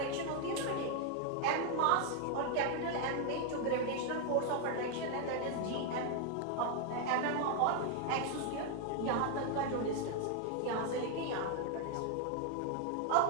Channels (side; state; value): both; different; correlation 0.00